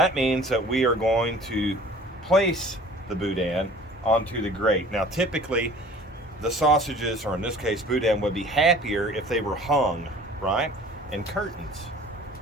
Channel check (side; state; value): both; normal; correlation 0.47